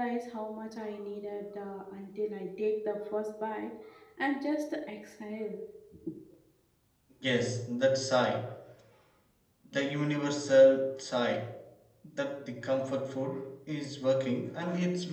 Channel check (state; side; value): identical; both; correlation 1.00